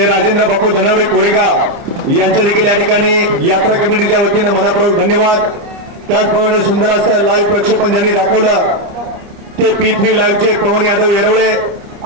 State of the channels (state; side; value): late; left; 29 ms